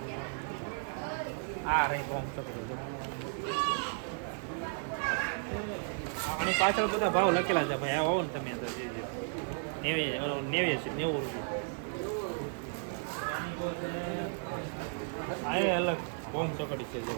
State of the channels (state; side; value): silent; left; 55 dB below the other